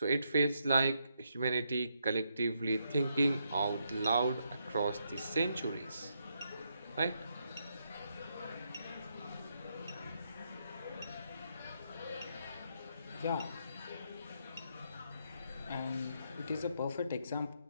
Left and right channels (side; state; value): both; inverted; correlation -0.78